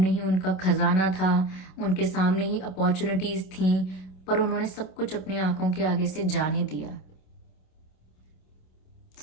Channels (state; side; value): late; right; 27 ms